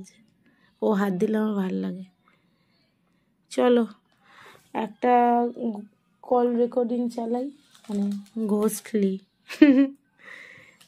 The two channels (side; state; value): both; identical; correlation 1.00